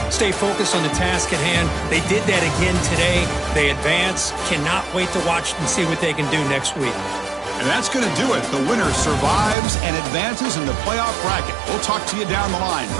stay focused on the task at hand. They did that again today. They advance. Cannot wait to watch and see what they can do next week. And that's going to do it. The winner survives and advances in the playoff bracket. We'll talk to you down the line.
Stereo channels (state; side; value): drops out; left; at 9.6 s